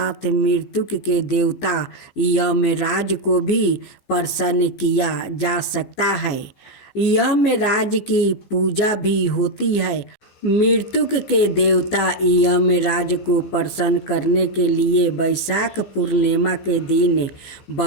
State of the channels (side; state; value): right; late; 15 ms